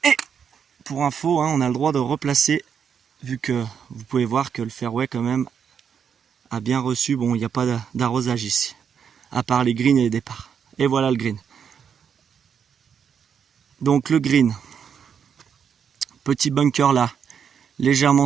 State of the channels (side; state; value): left; quieter; 7.4 dB